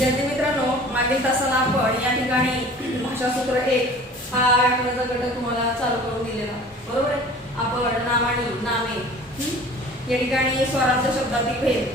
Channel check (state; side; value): normal; both; correlation 0.45